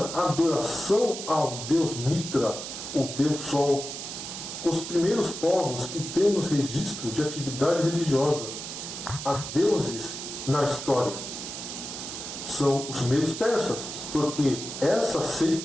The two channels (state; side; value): noise; right; hiss, 8 dB below the sound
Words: à adoração ao deus Mitra, o deus sol. Os primeiros povos que temos registro de atividade religiosa a deuses na história são os medos persas, porque essa